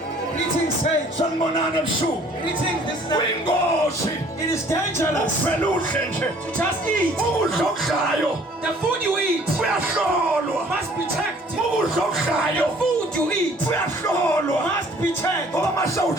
Greeting saints. Sanibonani ebusuku. Greeting. This is Kuyingozi. it is dangerous Ufela udle nje. to just eat. Ukudla okudlayo The food you eat kuyahlolwa. must be checked. Ukudla okudlayo Food you eat kuyahlolwa. must be checked. Ngoba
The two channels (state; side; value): normal; both; correlation 0.55